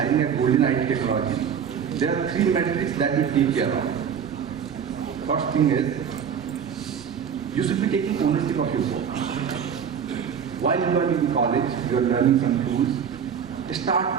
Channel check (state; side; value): quieter; left; 7.6 dB